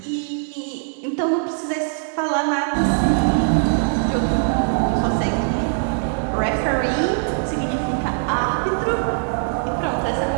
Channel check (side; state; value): left; silent; 65 dB below the other